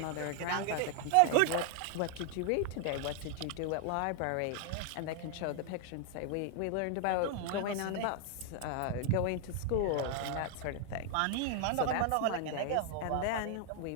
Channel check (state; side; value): different; both; correlation 0.00